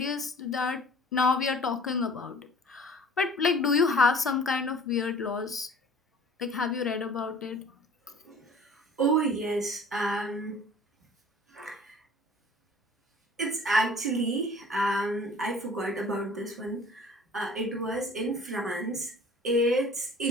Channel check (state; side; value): normal; both; correlation 0.48